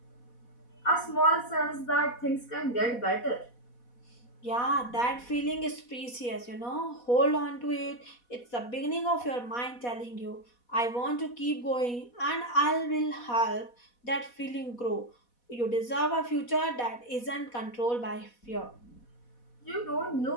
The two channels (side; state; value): right; late; 4.1 ms